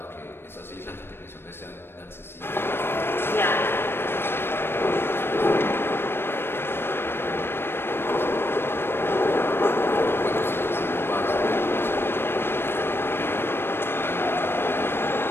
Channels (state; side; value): late; right; 0.11 ms